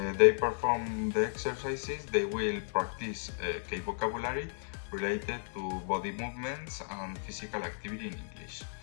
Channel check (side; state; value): right; silent; digital silence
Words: they perform the exercises, they will practice key vocabulary related to body movements and physical activity in English.